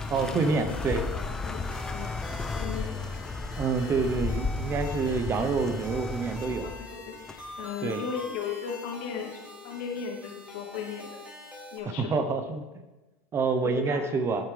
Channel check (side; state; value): both; normal; correlation 0.55